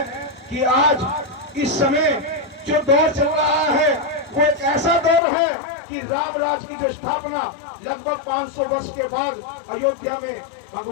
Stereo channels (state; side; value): drops out; right; at 5.2 s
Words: कि आज इस समय जो दौर चल रहा है, वो एक ऐसा दौर है कि राम राज की जो स्थापना लगभग 500 वर्ष के बाद अयोध्या में